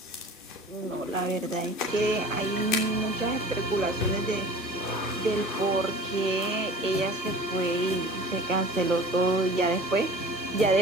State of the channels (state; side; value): normal; both; correlation 0.42